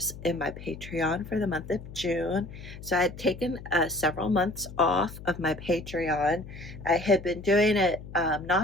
in my Patreon for the month of June. So I had taken several months off of my Patreon. I had been doing it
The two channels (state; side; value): noise; left; hum, 14 dB below the sound